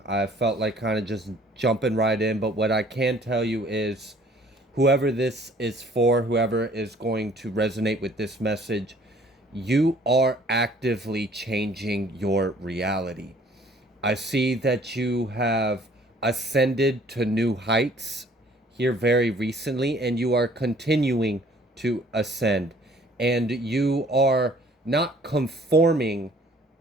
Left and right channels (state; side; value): normal; both; correlation 0.56